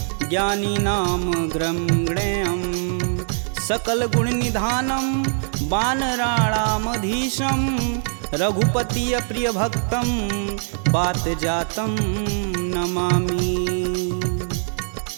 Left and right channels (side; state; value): left; silent; 64 dB below the other